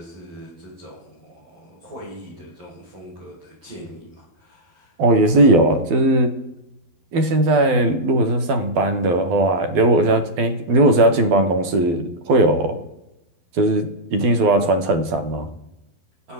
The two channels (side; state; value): left; late; 12 ms